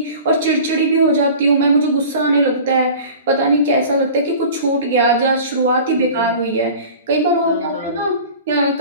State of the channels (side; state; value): both; inverted; correlation -0.40